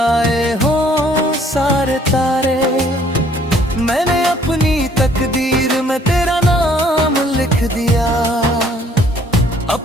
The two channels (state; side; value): normal; both; correlation 0.61